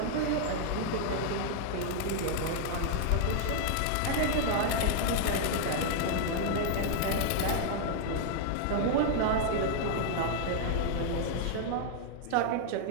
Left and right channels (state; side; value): different; both; correlation 0.00